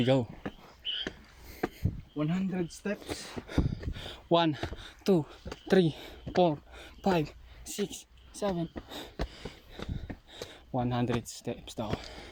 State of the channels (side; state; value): both; identical; correlation 1.00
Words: 100 steps. 1, 2, 3, 4, 5, 6, 7. 100 steps daw.